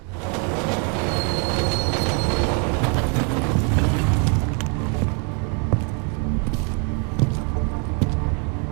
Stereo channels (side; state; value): left; quieter; 37.6 dB